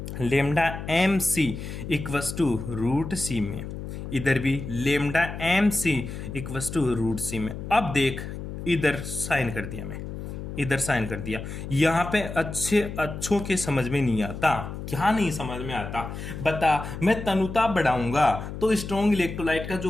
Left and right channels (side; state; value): left; noise; hum, 8 dB below the sound